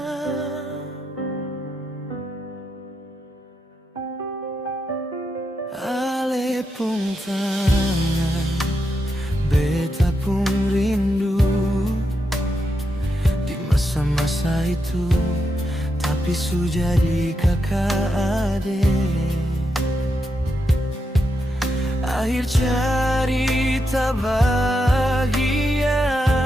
Ale pun tangan, beta pun rindu di masa-masa itu, tapi sudah jadi kakak adik. Akhir cerita bahagia,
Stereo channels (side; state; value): both; normal; correlation 0.84